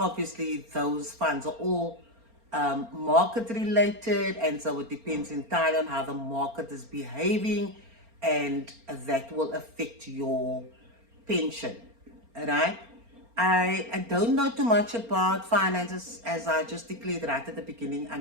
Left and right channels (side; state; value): left; late; 4.3 ms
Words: those funds are all market related, and so it depends entirely on how the market is behaving, and that will affect your pension. Right? I don't know too much about finances, as I just declared right at the beginning.